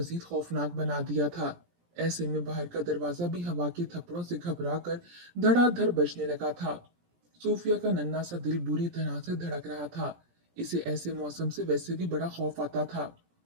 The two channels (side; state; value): left; late; 17 ms